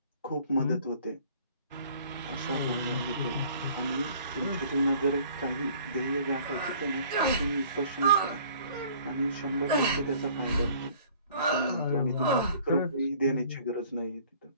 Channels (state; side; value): inverted; both; correlation -0.54